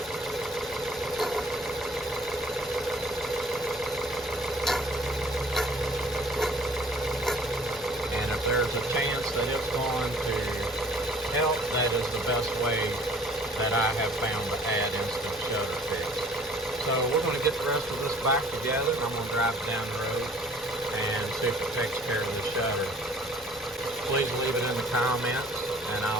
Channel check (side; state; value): both; normal; correlation 0.53